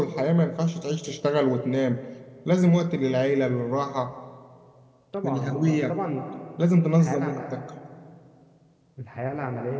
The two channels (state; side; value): identical; both; correlation 1.00